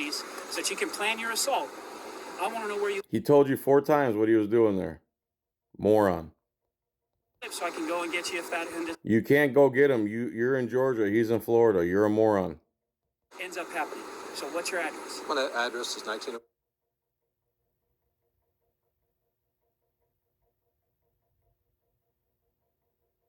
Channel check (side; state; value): both; identical; correlation 1.00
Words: so that you can plan your assault, I want to know where you He told you 4 times what he was doing there. Moron. live so I can go and get you if that You can't go get him. You're in Georgia. He's in Florida. You're a moron. ends up happening. So what's your address? My address is 19.